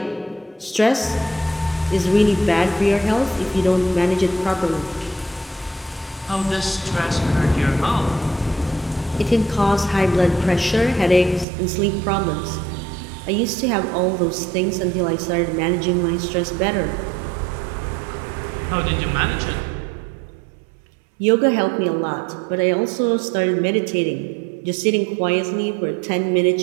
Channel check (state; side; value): drops out; left; at 11.5 s